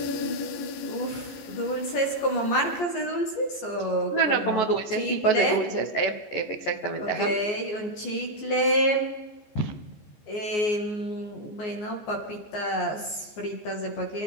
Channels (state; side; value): late; right; 14 ms